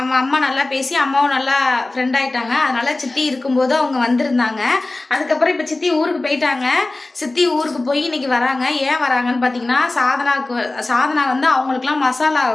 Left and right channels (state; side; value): quieter; right; 3.0 dB